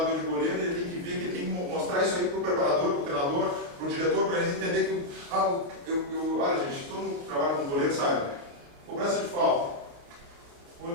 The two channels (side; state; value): left; late; 29 ms